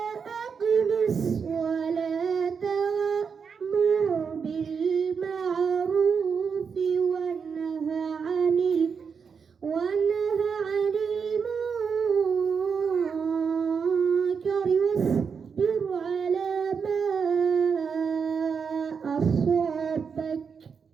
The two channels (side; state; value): left; quieter; 6.1 dB